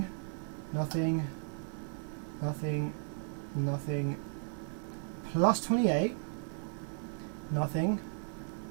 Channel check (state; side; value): silent; left; 54 dB below the other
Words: nothing, nothing, nothing, plus 28, nothing,